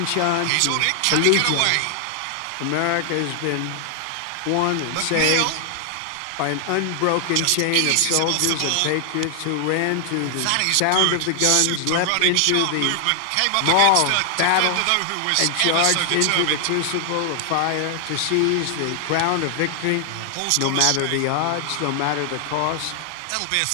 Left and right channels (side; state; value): both; different; correlation 0.00